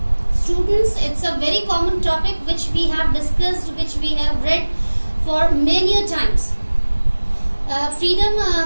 Students, it's a very common topic which we have discussed, which we have read for many times. Freedom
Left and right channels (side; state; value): both; inverted; correlation -1.00